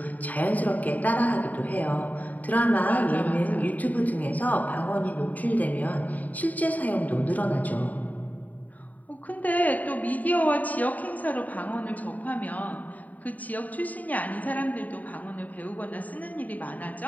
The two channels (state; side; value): late; right; 0.075 ms